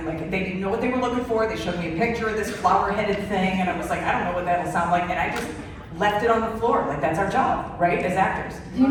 like, they didn't know what they were looking for. They showed me a picture of this flower-headed thing, and I was like, I don't know what that'll sound like, and I just left it on the floor. Like, that's our job, right, as actors. Do you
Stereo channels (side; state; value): both; identical; correlation 1.00